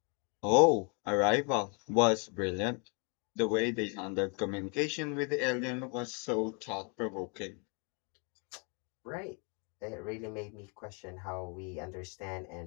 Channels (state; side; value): quieter; right; 36.5 dB